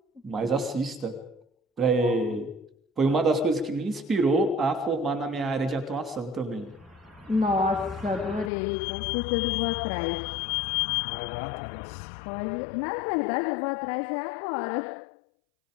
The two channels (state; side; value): drops out; right; at 8.5 s